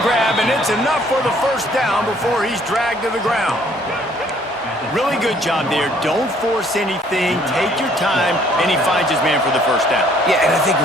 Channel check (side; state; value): both; normal; correlation 0.61